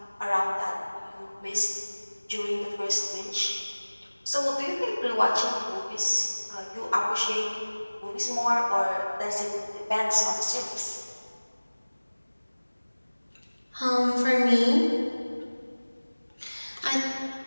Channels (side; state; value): both; inverted; correlation -1.00